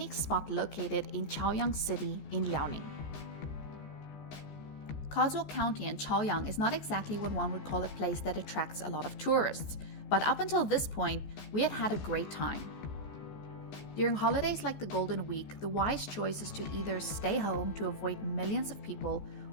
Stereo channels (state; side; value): late; right; 14 ms